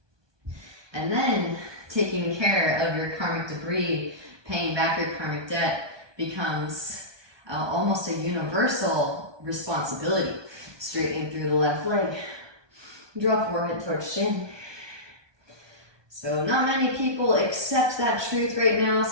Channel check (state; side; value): late; left; 1.2 ms